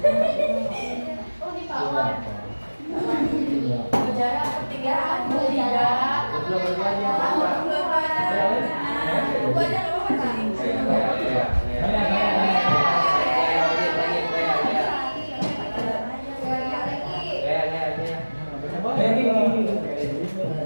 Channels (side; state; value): both; inverted; correlation -1.00